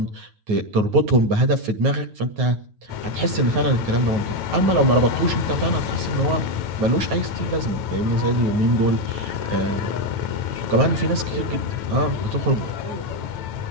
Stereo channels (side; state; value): left; late; 9.4 ms